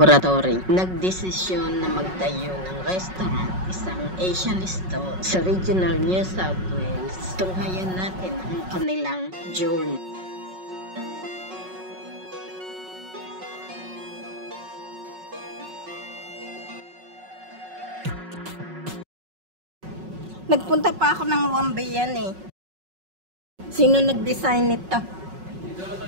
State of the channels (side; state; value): left; late; 5.4 ms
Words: nagdesisyon na magtayo ng restaurant, isang Asian store sa regional New South Wales. Tunghayan natin ang kanilang journey. Nagpunta pa ako ng Wambayan eh. Sino nag-design nito?